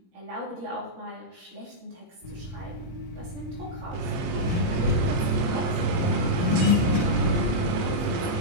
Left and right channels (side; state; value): left; late; 23 ms